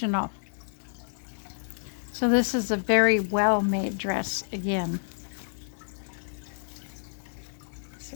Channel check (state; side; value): silent; right; digital silence